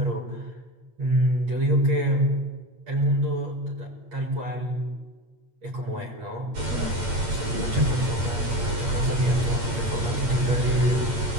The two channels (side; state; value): left; late; 8.8 ms